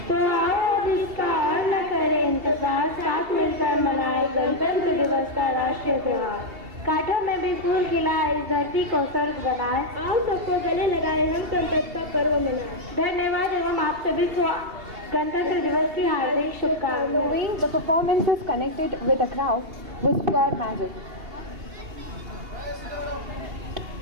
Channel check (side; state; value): left; late; 2.7 ms